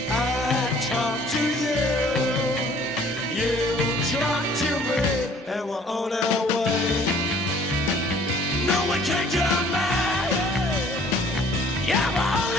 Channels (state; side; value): normal; both; correlation 0.56